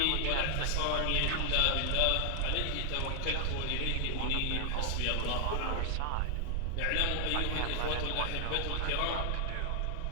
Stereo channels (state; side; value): different; both; correlation 0.00